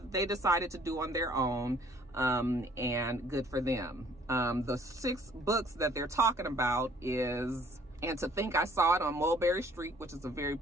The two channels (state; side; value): normal; both; correlation 0.58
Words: they decided to do on their own, and good for them. The 6 books that they're talking about is, and to think I saw it on Mulberry Street, which is a very